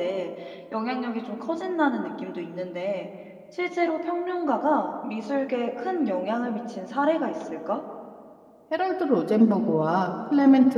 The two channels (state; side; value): identical; both; correlation 1.00